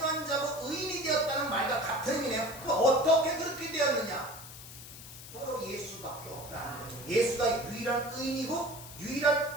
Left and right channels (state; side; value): noise; left; hiss, 14 dB below the sound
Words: 자고 의인이 되었다는 말과 같은 의미네요. 그럼 어떻게 그렇게 되었느냐? 바로 예수밖에 없다. 예수가 유일한 의인이고